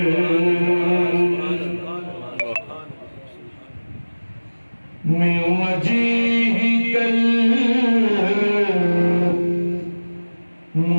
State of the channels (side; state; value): both; inverted; correlation -1.00